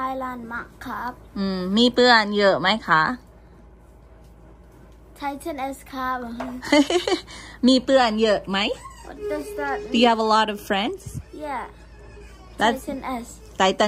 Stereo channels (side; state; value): both; identical; correlation 1.00